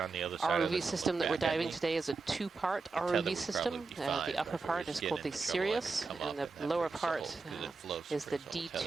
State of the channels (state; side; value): quieter; left; 4.2 dB